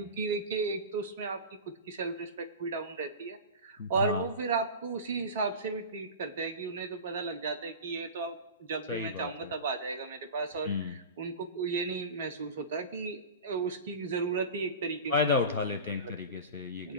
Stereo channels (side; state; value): both; inverted; correlation -0.30